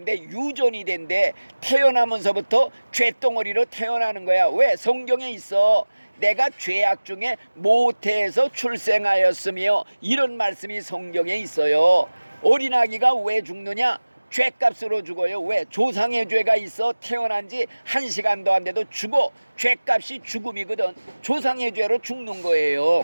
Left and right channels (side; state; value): both; inverted; correlation -1.00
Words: 유전이 된대. 태어나면서부터 죄덩어리로 태어나는 거야. 왜? 성경에 있어. 내가 죄악 중에 모태에서 출생하였으며, 이런 말씀이 성경에 있어요. 어린아기가 왜 죽느냐? 죄값으로 죽어요. 왜? 조상의 죄가 있어 태어난 지 1시간도 안 돼도 죽어. 죄값이 죽음이거든. 조상의 죄로 죽는 거예요.